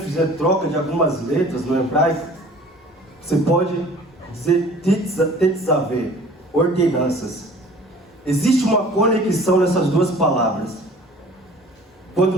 troca de algumas letras no hebraico, você pode dizer tetzaveh, ordenanças. Existe uma conexão nessas duas palavras. Quando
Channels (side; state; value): both; normal; correlation 0.48